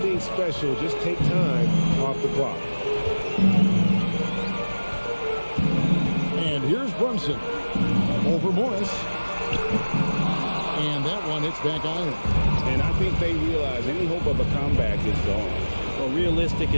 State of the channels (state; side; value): inverted; both; correlation -1.00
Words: special. Just take time off the clock. And here's Brunson. Over Morris. And that one hits back iron. And I think they realize any hope of a comeback is gone. Well, realistic